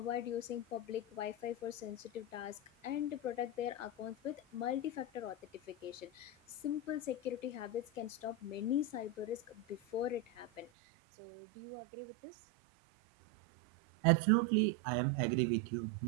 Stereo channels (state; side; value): drops out; left; at 10.7 s